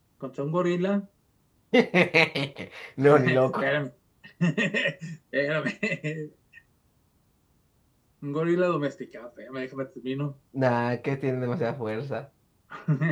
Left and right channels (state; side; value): identical; both; correlation 1.00